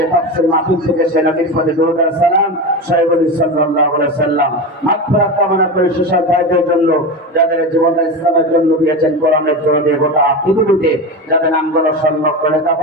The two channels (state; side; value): normal; both; correlation 0.22